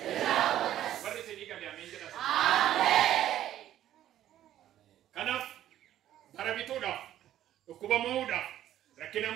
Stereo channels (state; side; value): quieter; left; 12.3 dB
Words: ይራወታ ወርሴ ዲቀም ያሜን ጀራስ አሜን ከናፍ ባረቢቶዳ እኩባ መውዳ ረኪና